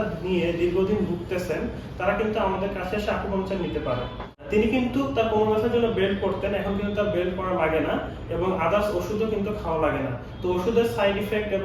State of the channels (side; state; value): both; identical; correlation 1.00